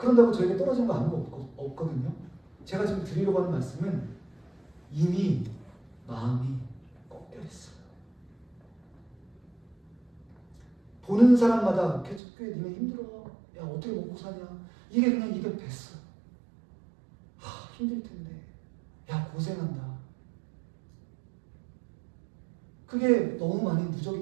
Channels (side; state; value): left; drops out; at 12.2 s